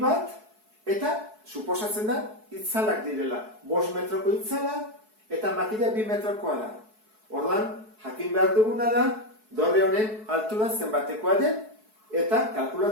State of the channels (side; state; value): left; late; 4.7 ms